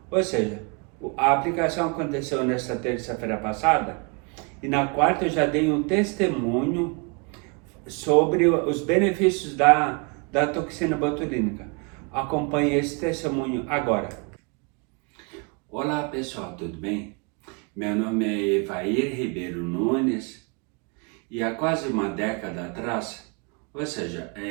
Ou seja, a aplicação aconteceu nesta terça-feira passada e na quarta eu já dei um testemunho sobre os benefícios da toxina botulínica. Acompanhe esse testemunho agora. Olá pessoal, tudo bem? Meu nome é Evair Ribeiro Nunes e há quase uma década atrás, ou seja,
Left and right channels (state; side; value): quieter; left; 33.2 dB